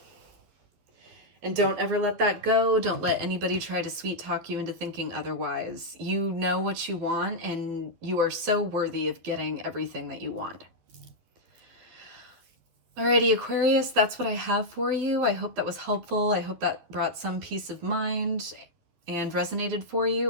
And don't ever let that go. Don't let anybody try to sweet talk you into thinking otherwise. You know what you want, and you are so worthy of getting everything that you want. Alrighty, Aquarius, that's what I have for you. I hope that was helpful. I hope that brought some peace of mind and resonated for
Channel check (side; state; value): left; late; 12 ms